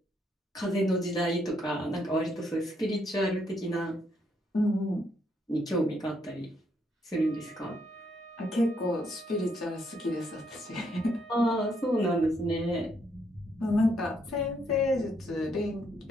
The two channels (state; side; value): normal; both; correlation 0.73